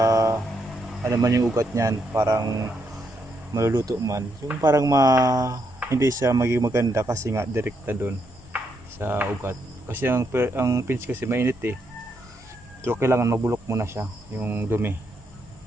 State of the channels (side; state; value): both; normal; correlation 0.78